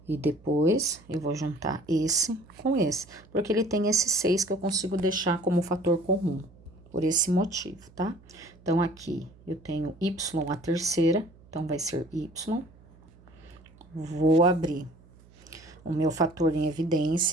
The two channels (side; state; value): right; noise; hum, 26 dB below the sound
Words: E depois, eu vou juntar esse com esse, porque ele tem esse 6 que eu consigo deixar como fator comum, por esse motivo, tá? Então, aqui eu tenho y a terceira, então vai ser y. Vou abrir o meu fator em